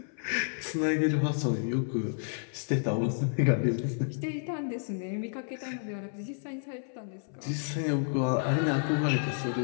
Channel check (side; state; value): right; silent; 57 dB below the other